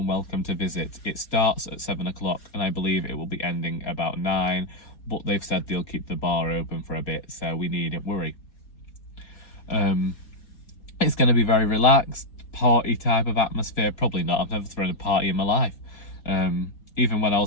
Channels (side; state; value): right; late; 4.2 ms